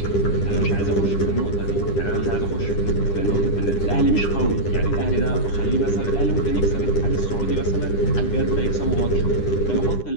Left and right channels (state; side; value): late; right; 10 ms